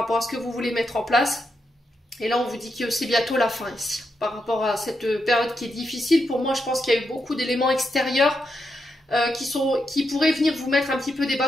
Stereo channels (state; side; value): normal; both; correlation 0.84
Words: à ce que vous voulez mettre en place. Et là, on vous dit que c'est bientôt la fin ici. Par rapport à cette période qui est difficile, pour moi, je pense qu'il y a eu beaucoup d'éléments extérieurs qui pourraient venir vous mettre un petit peu des